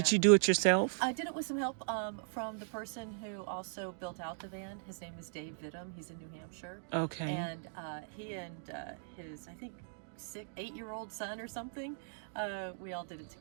you do it yourself? I did it with some help from the person who also built out the van. His name is Dave Vittum. He's in New Hampshire. Okay. And he and his, I think, 8-year-old son or something, we all did it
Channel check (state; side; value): silent; left; digital silence